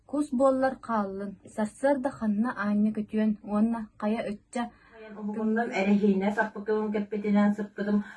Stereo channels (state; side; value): identical; both; correlation 1.00